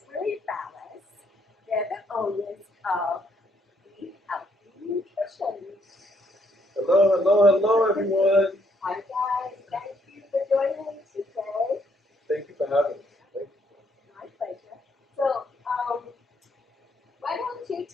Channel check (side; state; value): both; normal; correlation 0.71